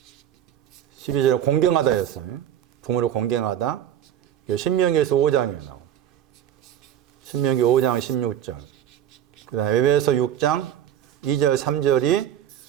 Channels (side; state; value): left; quieter; 10.6 dB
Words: 12절에 공경하다였어요. 부모를 공경하다. 신명기에서 5장에 나와요. 신명기 5장 16절. 그 다음에 에베소 6장 2절 3절이